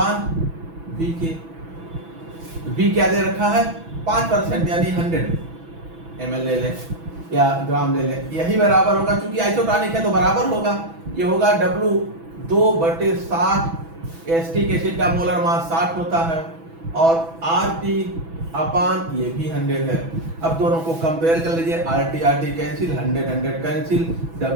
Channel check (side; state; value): left; late; 6.1 ms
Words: के। V क्या दे रखा है 5%, यानी 100 ml ले ले या ग्राम ले ले, यही बराबर होगा, क्योंकि आइसोटोनिक है तो बराबर होगा। ये होगा W 2/60। एस्टिक एसिड का मोलर मास 60 होता है, और RT/ ये भी 100 है। अब दोनों को कंपेयर कर लीजिए, RT कैंसिल, 100 कैंसिल,